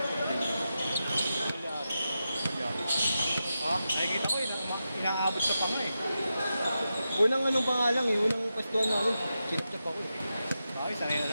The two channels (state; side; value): inverted; both; correlation -0.89